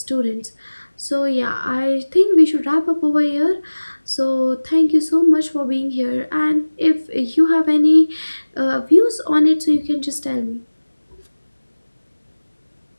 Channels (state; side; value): inverted; both; correlation -1.00